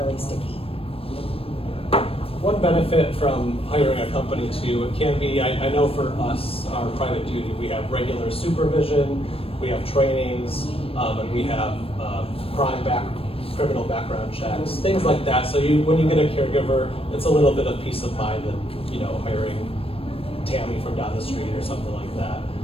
sticky. One benefit from hiring a company too, it can be, I know for us, our private duty, we have regular supervision, we have trainings, and we have criminal background checks, things like that. So when you get a caregiver, it's a little bit of peace of mind than hiring Tammy from down the street or something like that.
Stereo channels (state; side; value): late; right; 0.28 ms